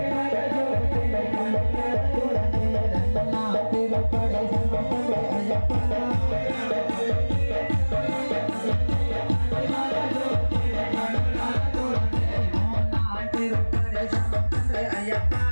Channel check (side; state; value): both; inverted; correlation -1.00